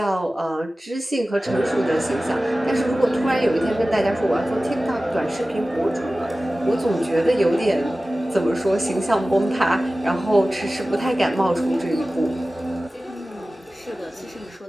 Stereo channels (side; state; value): both; normal; correlation 0.96